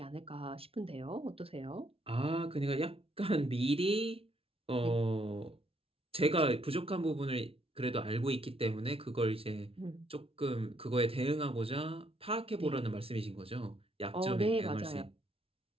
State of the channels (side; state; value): left; late; 0.27 ms